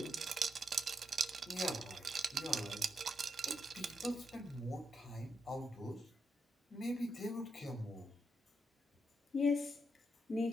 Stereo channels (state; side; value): normal; both; correlation 0.82